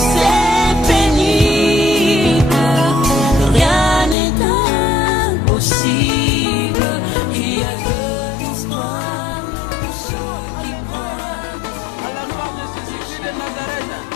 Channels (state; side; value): drops out; right; at 4.2 s